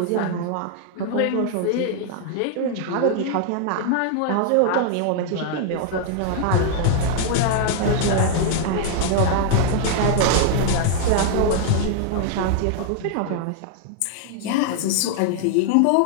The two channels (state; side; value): different; both; correlation 0.00